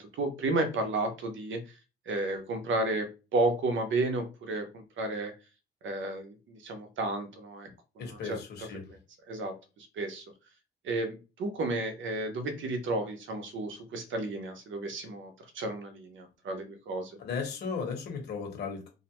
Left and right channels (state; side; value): normal; both; correlation 0.33